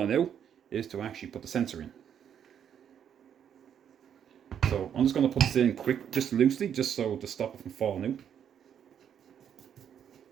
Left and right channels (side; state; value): left; quieter; 8.8 dB